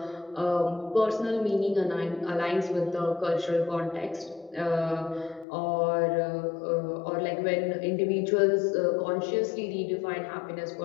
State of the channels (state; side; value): drops out; right; at 5.5 s